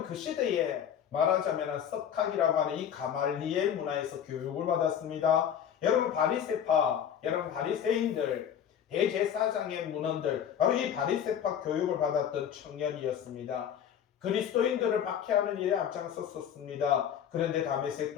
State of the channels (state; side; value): quieter; right; 9.0 dB